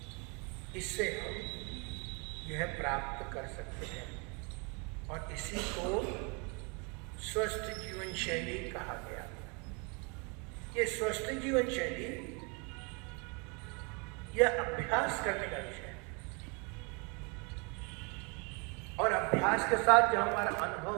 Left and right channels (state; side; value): quieter; left; 32.8 dB